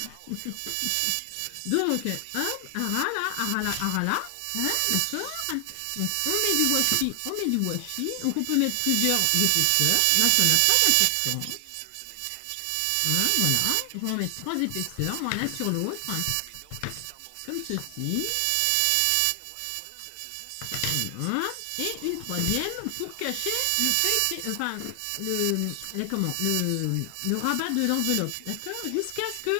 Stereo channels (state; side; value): different; both; correlation 0.00